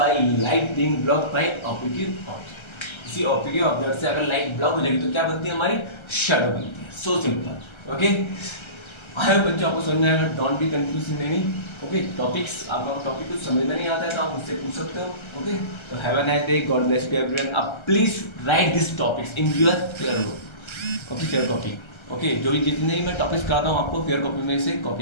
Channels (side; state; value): right; late; 1.3 ms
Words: by light being blocked by optic object, किसी optic object से अगर लाइट ब्लॉक हो जाएगी तो क्या बनती है, हमारी शेडो बनती है। So simple. Okay, I hope बच्चों आपको समझ में आएगा, don't be confuse in any. Okay, topics, आपका टॉपिक कुछ समझ में नहीं आता है तो आप मुझसे पूछ सकते हो। ओके, तो have a nice day, God bless you everyone. आप please write this topics in your fair book. Okay, fair copy. Okay, जो भी जितने भी मैं टॉपिक्स कराता हूँ आपको फेयर कॉपी में इसे